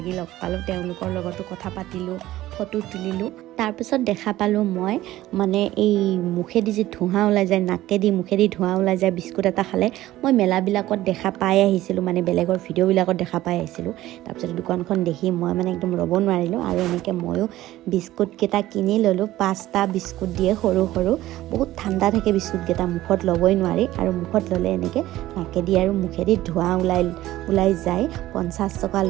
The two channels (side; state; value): left; quieter; 15.4 dB